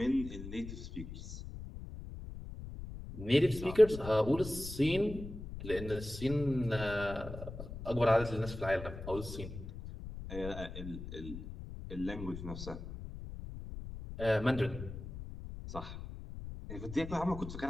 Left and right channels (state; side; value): noise; left; rumble, 10 dB below the sound